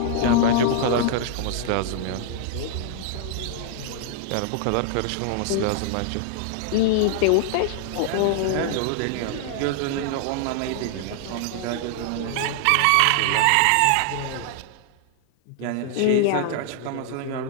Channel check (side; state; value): both; different; correlation 0.00